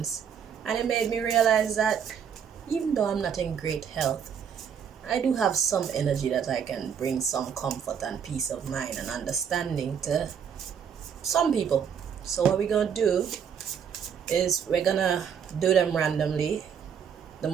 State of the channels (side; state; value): left; quieter; 7.7 dB